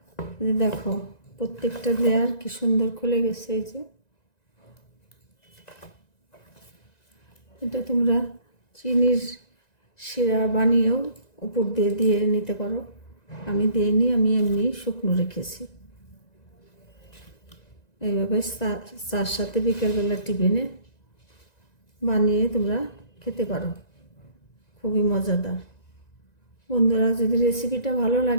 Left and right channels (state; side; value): late; right; 1.9 ms